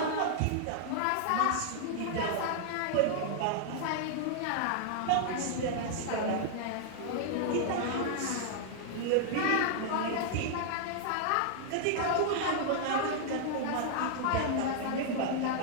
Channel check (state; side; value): different; both; correlation -0.01